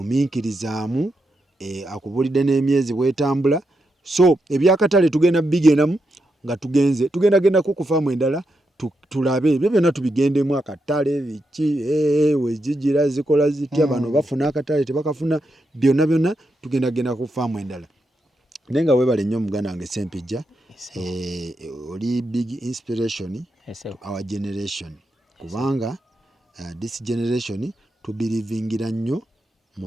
Akubulidde n'emyezi bwetambula. So ebyakatale tugenda bigendamu nga tugenda ku faamu endala tulabe ebyo byonna tubigendemu akatale biki wezigira zikola zitya bano bafuna akatale tebakafuna byonna tugenda ku faamu endala. Naye nga weebale nnyo muganda wange Sempijja oli big inspiration to our generation kubanga this generation tubirivingira nnyo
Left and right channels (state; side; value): normal; both; correlation 0.84